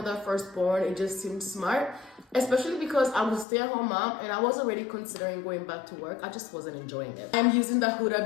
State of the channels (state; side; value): drops out; right; at 3.5 s